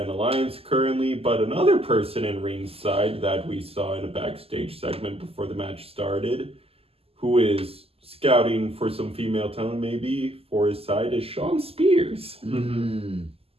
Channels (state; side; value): late; left; 0.28 ms